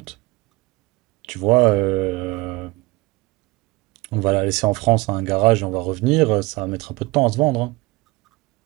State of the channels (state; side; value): quieter; left; 22.8 dB